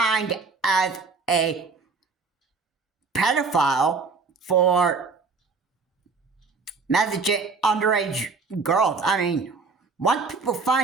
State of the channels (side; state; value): left; quieter; 4.5 dB